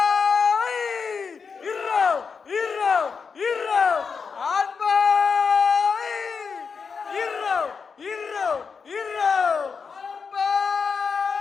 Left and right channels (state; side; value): quieter; right; 5.6 dB